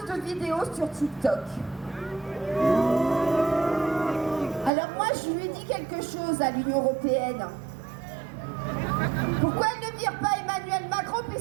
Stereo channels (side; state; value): left; drops out; at 4.7 s